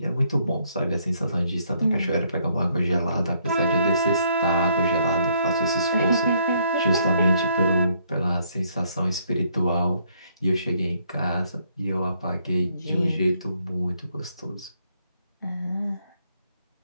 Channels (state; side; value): inverted; both; correlation -0.69